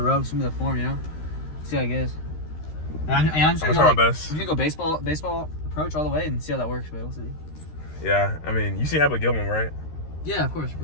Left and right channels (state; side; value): late; right; 13 ms